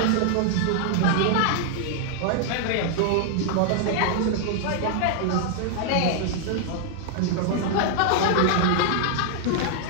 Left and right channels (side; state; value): both; different; correlation 0.00